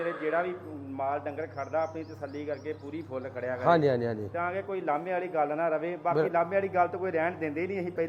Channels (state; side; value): identical; both; correlation 1.00